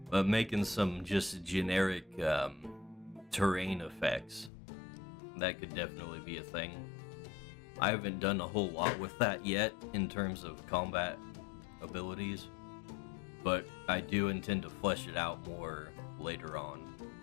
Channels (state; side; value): drops out; right; at 4.5 s